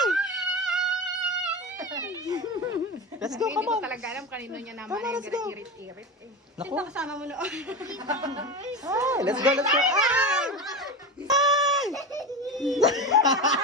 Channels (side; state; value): both; normal; correlation 0.23